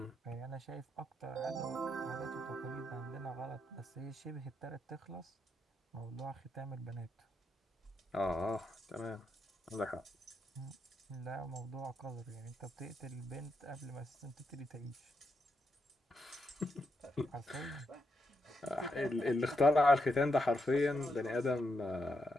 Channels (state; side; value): normal; both; correlation 0.82